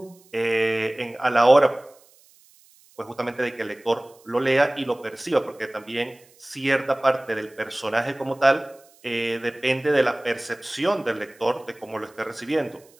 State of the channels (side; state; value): right; noise; hiss, 29 dB below the sound